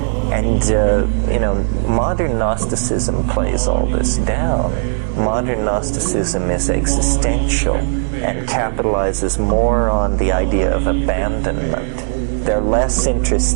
And, modern Gnosticism plays all this down. Modern Gnosticism is existential and capitalizes more on the idea of abandonment. They're less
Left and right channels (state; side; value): silent; left; digital silence